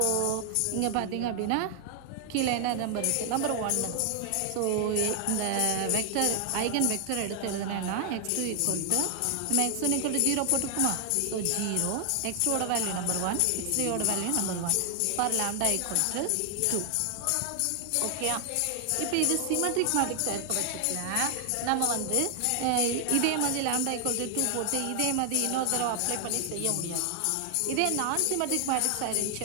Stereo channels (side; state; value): both; different; correlation 0.00